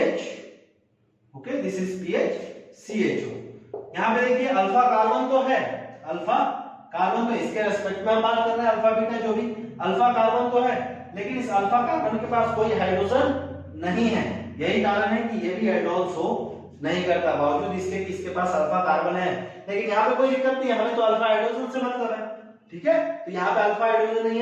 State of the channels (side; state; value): both; identical; correlation 1.00